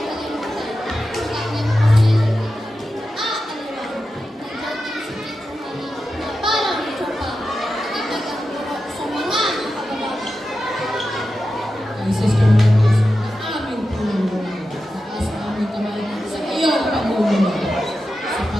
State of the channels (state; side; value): normal; both; correlation 0.91